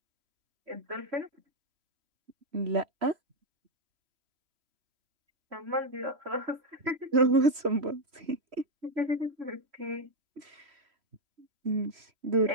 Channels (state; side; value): late; left; 3.1 ms